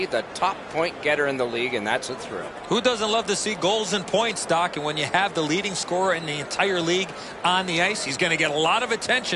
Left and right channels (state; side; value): identical; both; correlation 1.00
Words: the top point getter in the league, and that's a thrill. Who doesn't love to see goals and points, Doc? And when you have the leading scorer in the entire league on the ice, he's going to get a lot of